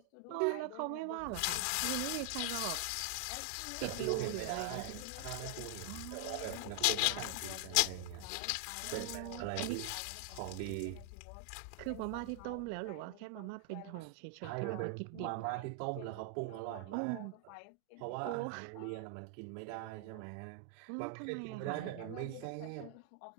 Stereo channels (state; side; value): different; both; correlation 0.00